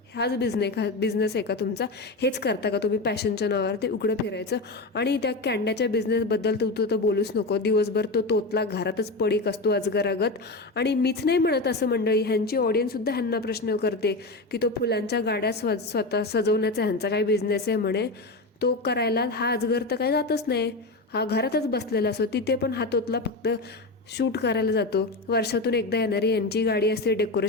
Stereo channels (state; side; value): quieter; right; 3.1 dB